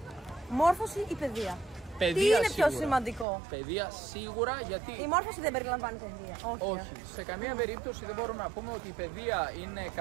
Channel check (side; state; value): left; drops out; at 3.2 s